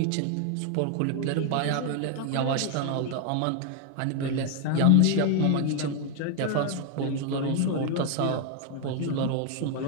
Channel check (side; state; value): both; different; correlation 0.01